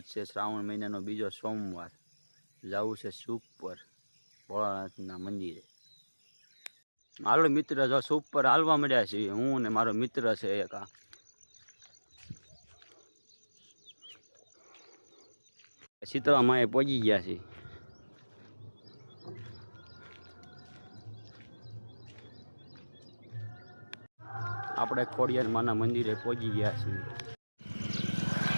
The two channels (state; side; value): inverted; both; correlation -1.00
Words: છે શ્રાવણ મહિનાનો બીજો સોમવાર। જવું છે સુખ પર ભોળાનાથના મંદિરે। હાલો મિત્ર, જો સુખ પર હાલવા મળ્યા છીએ હું ને મારો મિત્ર છે એક। શીતળા માએ પહોંચી ગયા છીએ। આપણે ખોડિયાર માના મંદિરે પહોંચી ગયા છીએ।